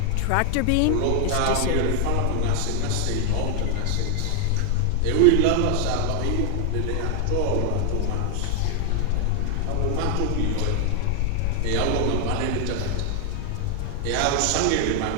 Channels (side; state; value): both; different; correlation 0.00